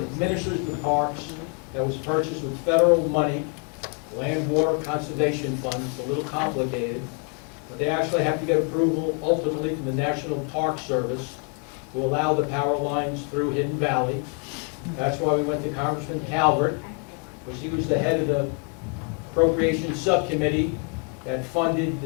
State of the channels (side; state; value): right; quieter; 36.3 dB